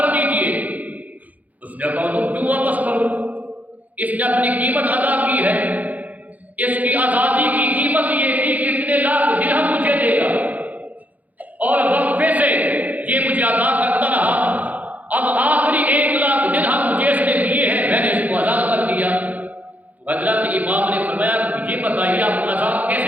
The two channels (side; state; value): left; late; 0.078 ms